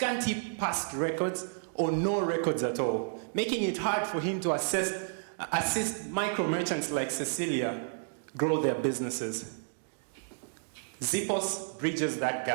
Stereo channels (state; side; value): silent; left; digital silence